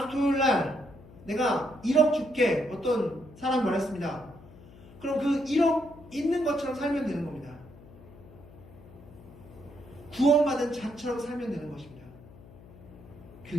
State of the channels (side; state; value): left; noise; hum, 20 dB below the sound